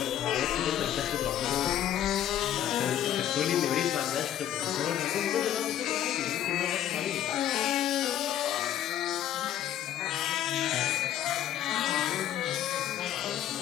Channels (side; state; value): right; quieter; 11.3 dB